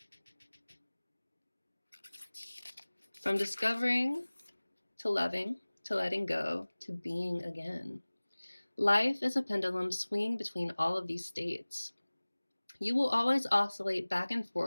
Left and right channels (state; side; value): inverted; both; correlation -1.00